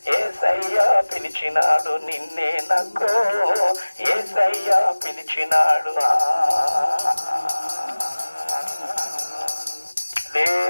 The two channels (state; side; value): inverted; both; correlation -1.00